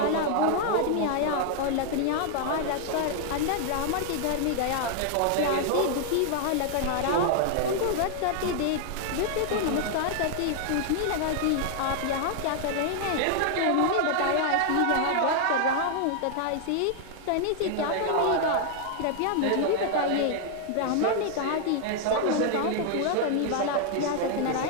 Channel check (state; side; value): different; both; correlation 0.00